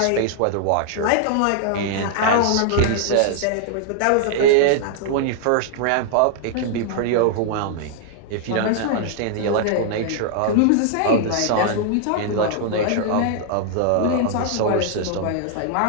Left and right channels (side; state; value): both; different; correlation -0.01